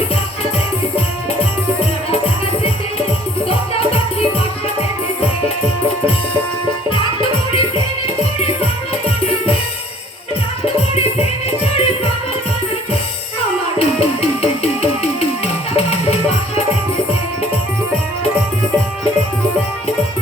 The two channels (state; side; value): normal; both; correlation 0.55